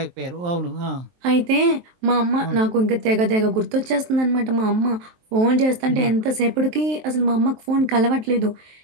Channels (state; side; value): late; left; 23 ms